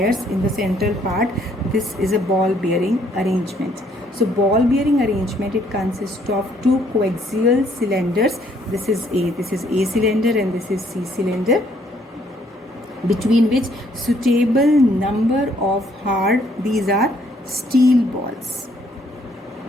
in the central part, this is a ball bearing arrangement. So ball bearing arrangement, it consists of two coaxial cylinders. This is A cylinder and this is C cylinder, between which suitable number of these are steel balls.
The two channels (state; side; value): normal; both; correlation 0.66